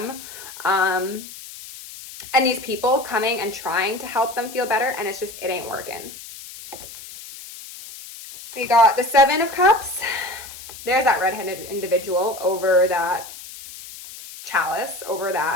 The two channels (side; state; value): left; noise; hiss, 14 dB below the sound